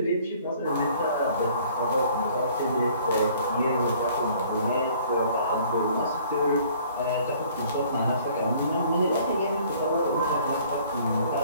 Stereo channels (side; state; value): both; inverted; correlation -0.56